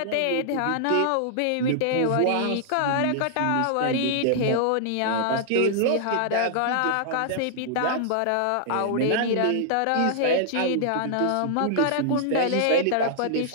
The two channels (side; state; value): both; different; correlation -0.01